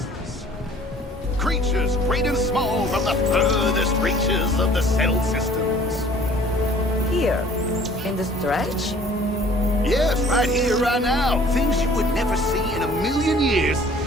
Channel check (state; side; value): normal; both; correlation 0.53